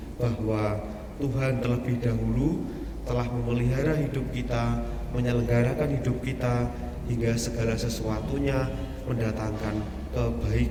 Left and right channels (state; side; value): identical; both; correlation 1.00